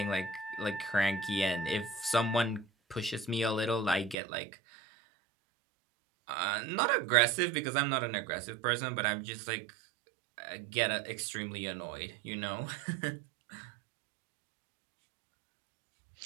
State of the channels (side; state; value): left; drops out; at 4.2 s